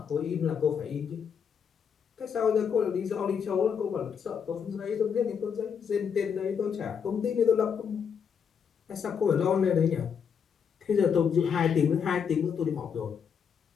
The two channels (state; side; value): quieter; right; 7.1 dB